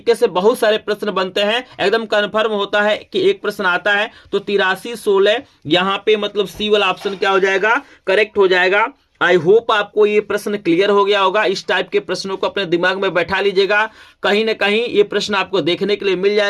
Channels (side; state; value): both; identical; correlation 1.00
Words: से बहुत सारे प्रश्न बनते हैं। एकदम कंफर्म होता है कि एक प्रश्न आता है तो 8316 यहाँ पे मतलब सी वाला ऑप्शन क्या हो जाएगा करेक्ट हो जाएगा। आई होप आपको ये प्रश्न क्लियर हो गया होगा। इस टाइप के प्रश्नों को अपने दिमाग में बैठा लीजिएगा, कहीं ना कहीं ये प्रश्न आपको देखने के लिए मिल